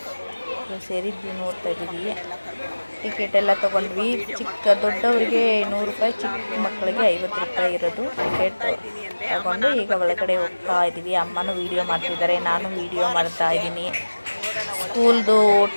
ಸೇರಿದ್ವಿ. ನೋಡ್ತಾ ಇದ್ದೀವಿ. ಟಿಕೆಟ್ ಎಲ್ಲ ತೊಗೊಂಡ್ವಿ. ದೊಡ್ಡವರಿಗೆ 100 ರೂಪಾಯಿ, ಚಿಕ್ಕ ಮಕ್ಕಳಿಗೆ 50 ರೂಪಾಯಿ ಇರೋದು ಟಿಕೆಟ್ ತಗೊಂಡು ಈಗ ಒಳಗಡೆ ಹೋಗ್ತಾ ಇದ್ದೀವಿ. ಅಮ್ಮನೂ ವೀಡಿಯೋ ಮಾಡ್ತಿದ್ದಾರೆ, ನಾನು ವೀಡಿಯೋ ಮಾಡ್ತಾ ಇದ್ದೀನಿ. ಸ್ಕೂಲ್ದು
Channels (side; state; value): both; inverted; correlation -1.00